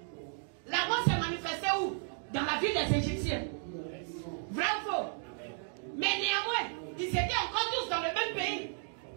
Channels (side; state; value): left; silent; 55 dB below the other